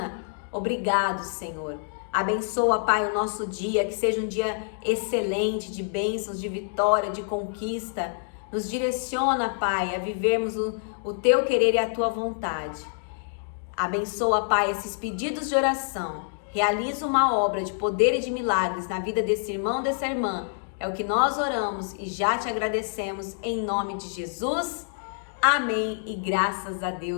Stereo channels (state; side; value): silent; right; digital silence